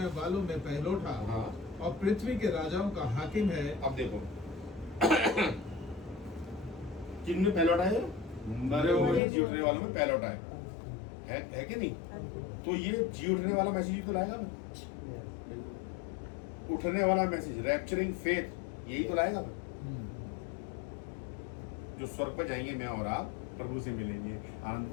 वालों में पहलौठा और पृथ्वी के राजाओं का हाकिम है। अब देखो किन में पहलौठा है? मरे हुए में जी उठने वालों में पहलौठा है कि नहीं? तो ये जी उठने वाला मैसेज ही तो लाएगा मैं, उठने वाला मैसेज, रैप्चरिंग फेथ, यही तो लाएगा मैं। जो स्वर्ग पर जाएंगे मैं और आप, प्रभु से मिलेंगे, आनंद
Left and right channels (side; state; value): right; drops out; at 9.2 s